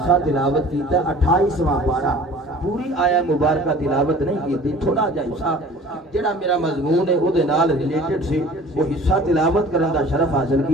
تلاوت کیتا 28واں پارہ پوری آیا مبارکہ تلاوت نہیں کی تھوڑا جہا حصہ جڑا میرا مضمون ہے او دے نال ریلیٹڈ سی وہ حصہ تلاوت کرن دا شرف حاصل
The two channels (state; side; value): normal; both; correlation 0.46